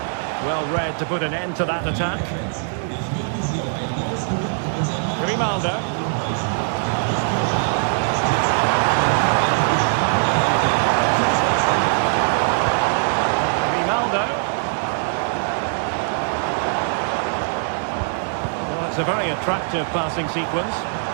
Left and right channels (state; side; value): silent; left; 65 dB below the other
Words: Well read to put an end to that attack. Grimaldo. Grimaldo. Well, it's a very attractive passing sequence.